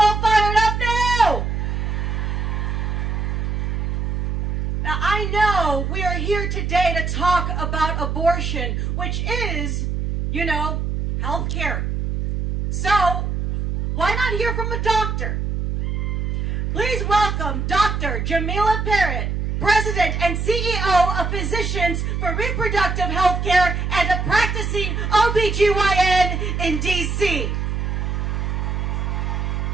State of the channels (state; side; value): noise; right; hum, 1 dB below the sound